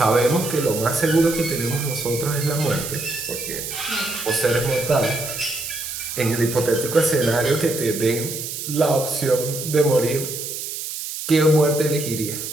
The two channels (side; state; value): right; noise; hiss, 7 dB below the sound